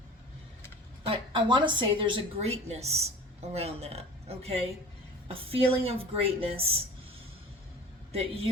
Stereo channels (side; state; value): both; normal; correlation 0.40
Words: I want to say there's a greatness around that, okay? A feeling of greatness that